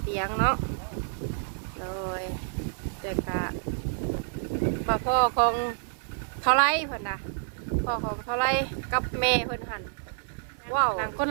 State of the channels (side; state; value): left; silent; digital silence